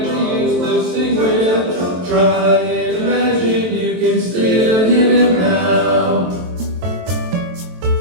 you used to sing with, try and imagine you can still hear them now.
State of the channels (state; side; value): late; left; 23 ms